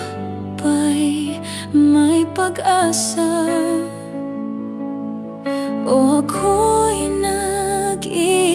pa'y may pag-asa. O ako'y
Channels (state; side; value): identical; both; correlation 1.00